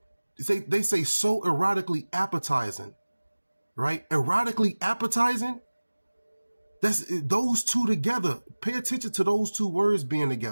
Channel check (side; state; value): both; inverted; correlation -1.00